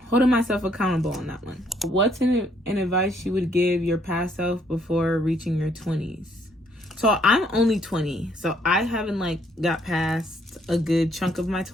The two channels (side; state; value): both; normal; correlation 0.68